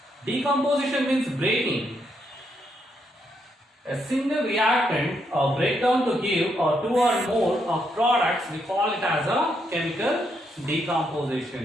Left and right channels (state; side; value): normal; both; correlation 0.77